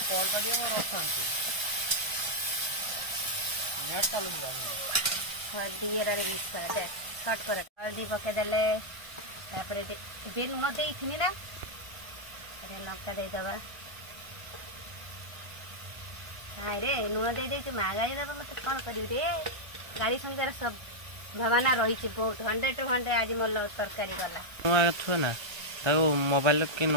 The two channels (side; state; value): left; late; 1.5 ms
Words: कॉल कर दियो मोर ऑप्शन छै नेट चालू जाने दिए रे मिक्स कर दे शॉर्ट कर हल्दी पके देले तापर बेल न देई थिनी ना अरे लंका दे दबा हाय रे नुआ दे दे के मागाई दबा मत कोन करिउ रे गाड़ी संगे सब भवाना रही छी बहुत 100 to 100 आज मोर लव तरकारी वाला नुआ थो ना ताको मोबाइल के न